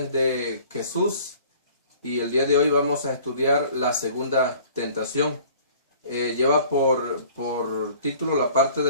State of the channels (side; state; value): both; inverted; correlation -0.51